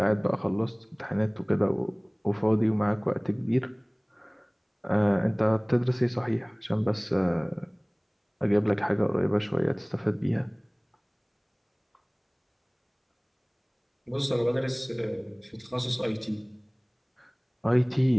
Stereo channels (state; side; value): identical; both; correlation 1.00